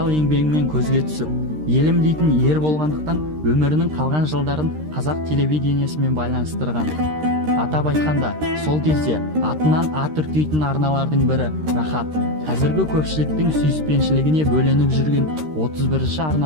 еңбегімен көзге түсіп, елім дейтін ер болғандықтан өмірінің қалған жылдарын қазақ телевидениесімен байланыстырған. Атап айтқанда, сол кезде атынан ат үркейтін арналардың бірі Рахат. Қазіргі көпшіліктің сүйіспеншілігіне бөленіп жүрген 31-ші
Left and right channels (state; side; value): late; left; 13 ms